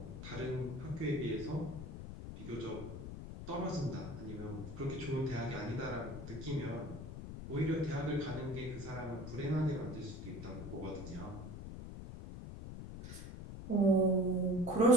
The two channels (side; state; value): left; noise; rumble, 9 dB below the sound